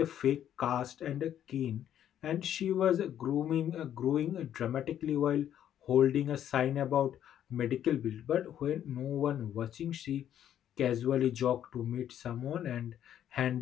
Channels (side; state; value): right; quieter; 10.5 dB